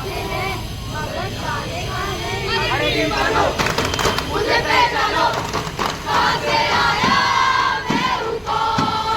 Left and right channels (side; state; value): both; identical; correlation 1.00